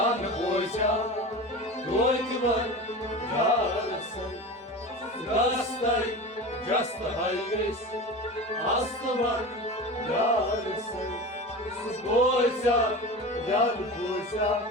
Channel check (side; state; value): both; normal; correlation 0.30